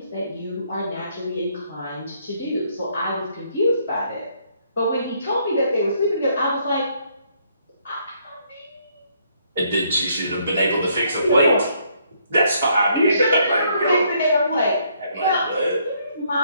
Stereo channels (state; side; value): inverted; both; correlation -0.69